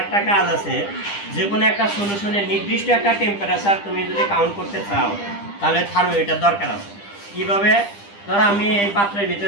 একটা কাজ আছে, যে কোনো একটা সলিউশনের নির্দিষ্ট একটা টেম্পারেচার তুমি যদি কাউন্ট করতে চাও তাহলে থার্মোমিটার দরকার আছে। কীভাবে? ধরো আমি এই পাত্রের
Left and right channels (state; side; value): late; right; 10 ms